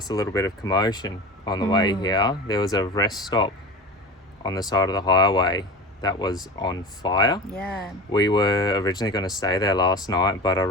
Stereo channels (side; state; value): both; normal; correlation 0.32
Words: a little bit of commotion on the way here. There was a rest stop on the side of the highway that was on fire. Yeah. We were originally going to stay there last night, but I